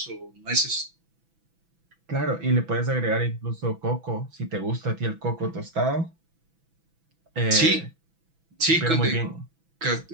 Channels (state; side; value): late; left; 6.0 ms